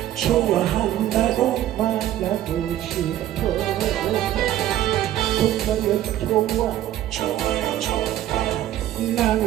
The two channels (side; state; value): left; quieter; 12.9 dB